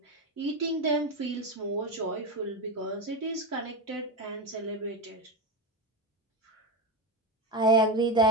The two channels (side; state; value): both; normal; correlation 0.16